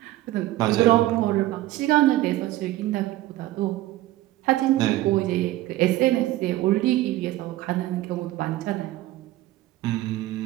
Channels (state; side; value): quieter; left; 15.9 dB